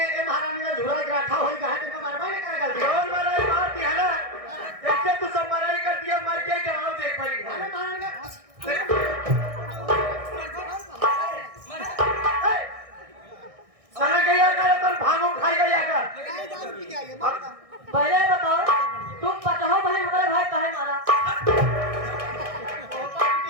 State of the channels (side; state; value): left; late; 1.6 ms